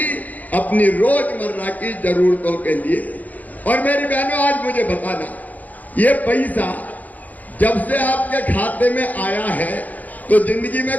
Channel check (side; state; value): right; late; 0.079 ms